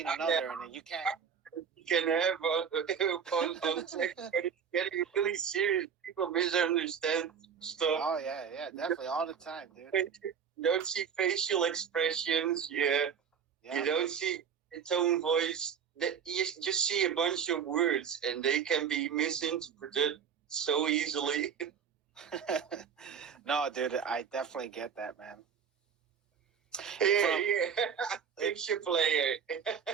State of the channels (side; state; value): left; quieter; 7.2 dB